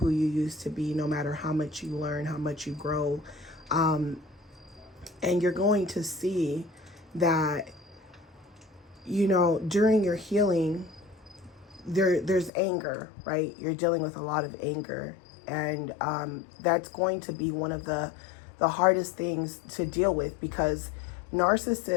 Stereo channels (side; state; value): right; drops out; at 12.5 s